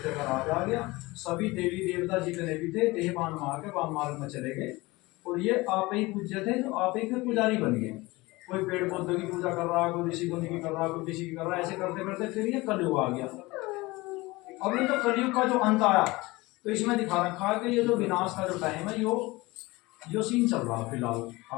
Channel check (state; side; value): quieter; right; 21.7 dB